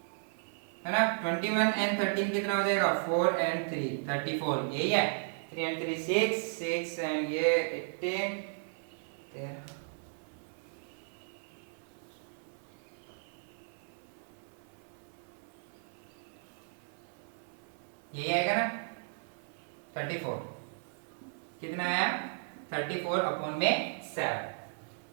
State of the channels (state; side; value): silent; left; 54 dB below the other